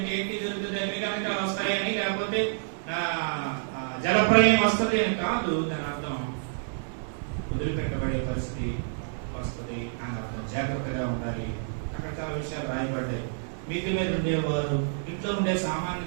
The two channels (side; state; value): left; silent; digital silence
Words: ఏంటి జరుగుతుంది? అగ్నిగంధకాలు వస్తాయని, లేకపోతే జలప్రలయం వస్తుంది అని కాదు. దాని అర్థం వదిలిపెట్టబడే పరిస్థితి వస్తుంది అని అర్థం. జాగ్రత్తగా ఉండాలి. అక్కడ చాలా విషయాలు రాయబడ్డాయి. మిద్ది మీద ఉండేవారు ఇంట్లో ఉండే సామాన్ని